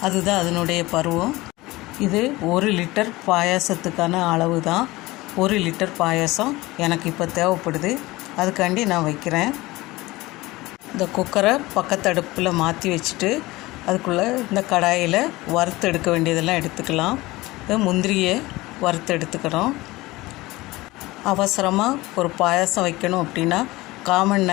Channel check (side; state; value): right; quieter; 20.0 dB